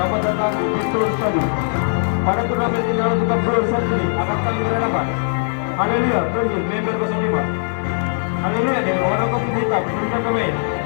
datang di Betul Stadium. Pada turnamen ini lalu kita berusaha ini akan kami berhadapan. Haleluya, Perjus, member 05. Haleluya, dengan warna kopi hitam, berikan pemain.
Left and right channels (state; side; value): silent; right; digital silence